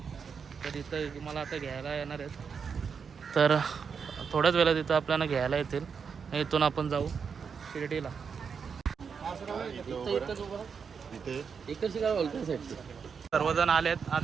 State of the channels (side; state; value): left; quieter; 6.2 dB